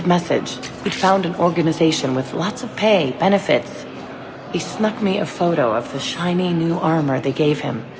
message. He'd found an organization with lots of pay, benefits. He snuck me a photo of the shiny new armor they gave him.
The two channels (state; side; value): identical; both; correlation 1.00